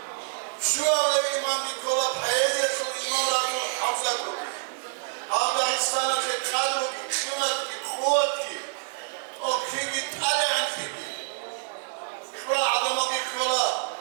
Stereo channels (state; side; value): silent; left; digital silence